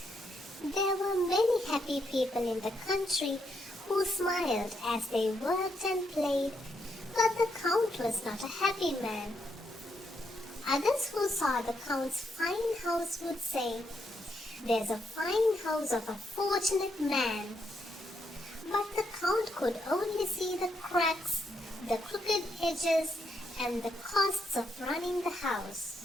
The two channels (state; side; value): normal; both; correlation 0.78